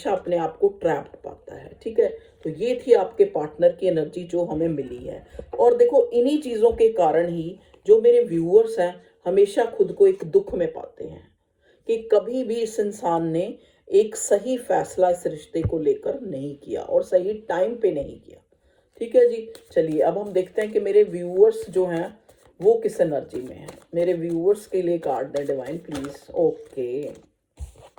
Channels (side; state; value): both; identical; correlation 1.00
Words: अपने आप को ट्रैप्ड पाता है। ठीक है, तो ये थी आपके पार्टनर की एनर्जी जो हमें मिली है। और देखो, इन्हीं चीजों के कारण ही जो मेरे व्यूअर्स हैं हमेशा खुद को एक दुख में पाते हैं कि कभी भी इस इंसान ने एक सही फैसला इस रिश्ते को लेकर नहीं किया और सही टाइम पे नहीं किया। ठीक है जी, चलिए अब हम देखते हैं कि मेरे व्यूअर्स जो हैं वो किस एनर्जी में हैं। मेरे व्यूअर्स के लिए कार्ड दें डिवाइन प्लीज। Okay,